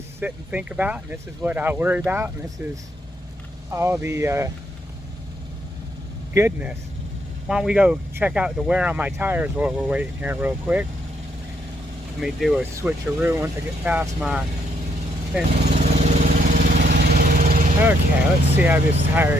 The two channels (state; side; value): normal; both; correlation 0.74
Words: and think about, and this is what I worry about, and this is all the goodness. Why don't we go check out the wear on my tires while we're waiting here real quick. Let me do a switcheroo once I get past my fence. Okay, let's see how this tire